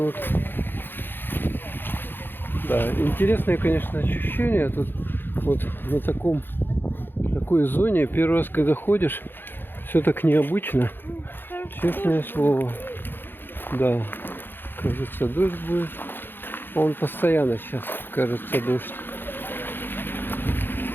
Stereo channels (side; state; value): right; late; 0.099 ms